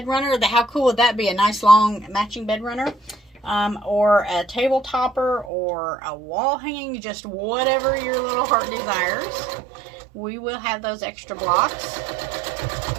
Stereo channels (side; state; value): left; drops out; at 5.5 s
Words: runner. How cool would that be? A nice long matching bed runner, or a table topper, or a wall hanging, just whatever your little heart desires. We will have those extra blocks,